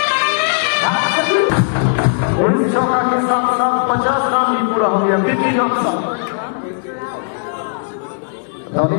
19 चौका के साथ साथ 50 रन भी पूरा हो गया। 50 रन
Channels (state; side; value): silent; right; digital silence